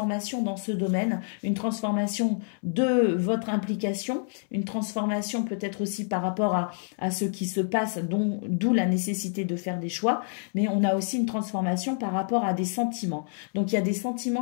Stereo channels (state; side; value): silent; right; 60 dB below the other